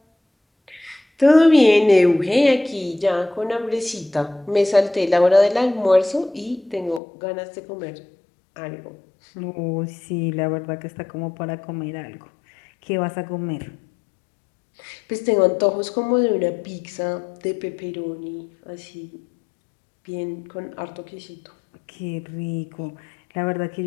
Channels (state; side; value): drops out; right; at 7.0 s